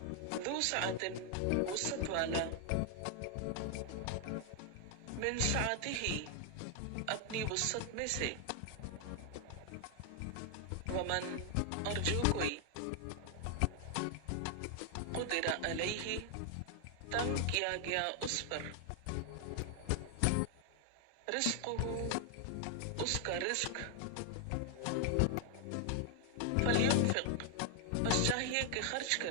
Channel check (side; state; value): both; different; correlation 0.00